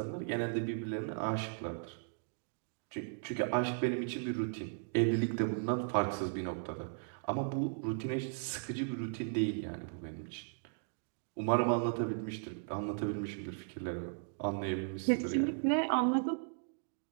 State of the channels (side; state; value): left; silent; digital silence